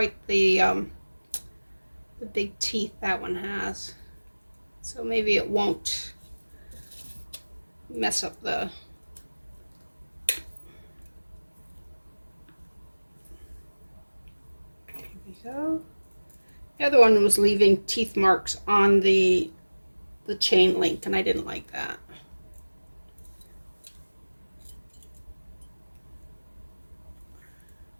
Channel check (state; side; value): inverted; both; correlation -1.00